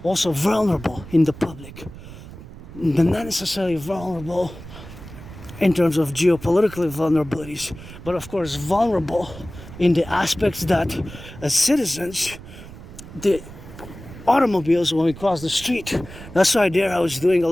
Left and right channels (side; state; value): right; noise; rumble, 15 dB below the sound